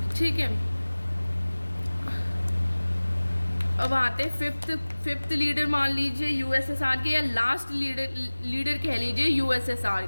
ठीक है, अब आते हैं फिफ्थ लीडर मान लीजिए यूएसएसआर के, या लास्ट लीडर कह लीजिए यूएसएसआर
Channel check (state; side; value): inverted; both; correlation -1.00